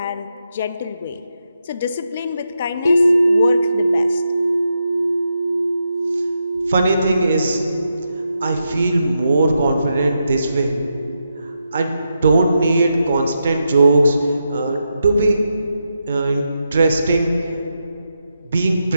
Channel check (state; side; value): inverted; both; correlation -0.85